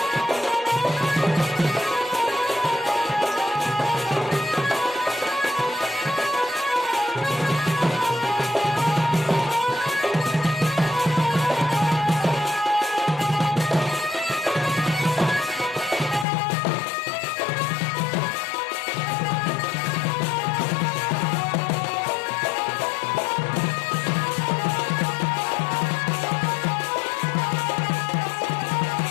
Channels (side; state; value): right; drops out; at 16.2 s